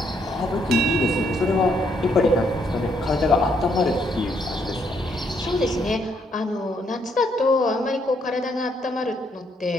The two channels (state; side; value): normal; both; correlation 0.72